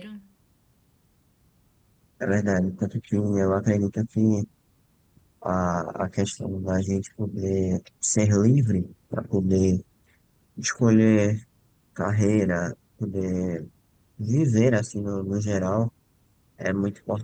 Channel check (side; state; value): both; identical; correlation 1.00